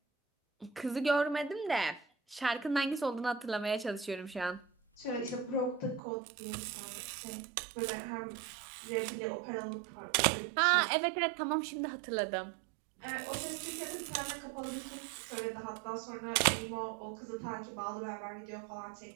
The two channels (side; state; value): left; drops out; at 6.0 s